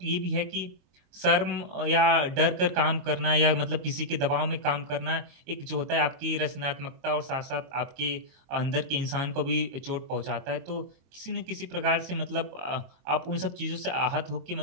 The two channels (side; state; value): left; late; 23 ms